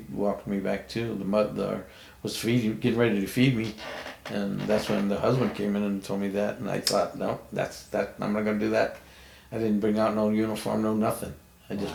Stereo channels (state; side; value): identical; both; correlation 1.00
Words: walked me back too. The mother was getting ready to feed me, and that's when the husband came in and told me that, and I thought, no, I'm not gonna do that. I didn't bring out no uniform, no nothing. I